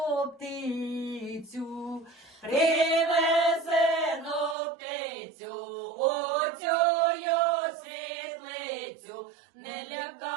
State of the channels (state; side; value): drops out; left; at 4.5 s